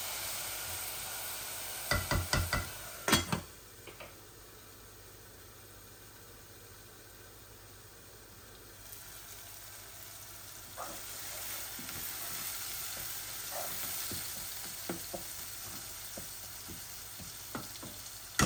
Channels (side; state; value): both; identical; correlation 1.00